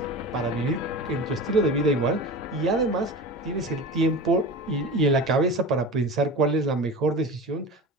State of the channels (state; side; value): normal; both; correlation 0.32